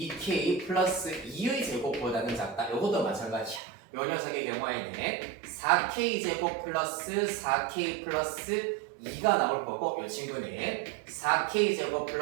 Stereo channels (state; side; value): drops out; left; at 3.6 s